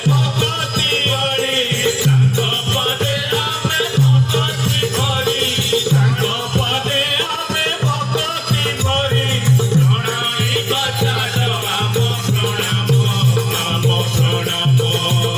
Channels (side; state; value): both; identical; correlation 1.00